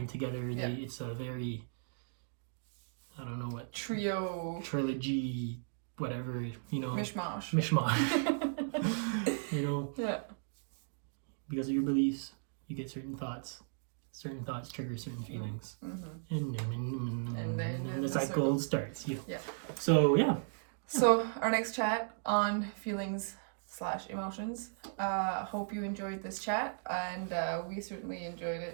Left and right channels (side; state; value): left; silent; digital silence